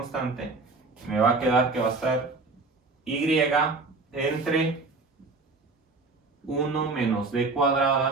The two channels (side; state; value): left; quieter; 3.7 dB